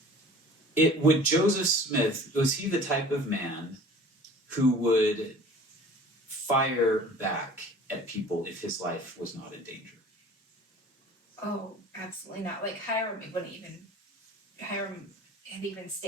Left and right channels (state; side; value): normal; both; correlation 0.46